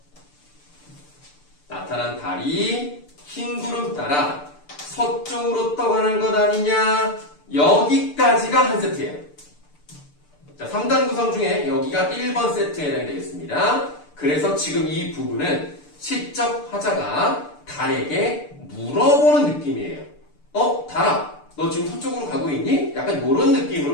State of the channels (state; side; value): late; right; 6.8 ms